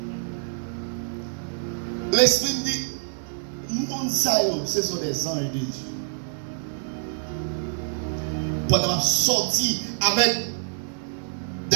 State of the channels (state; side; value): silent; left; 56 dB below the other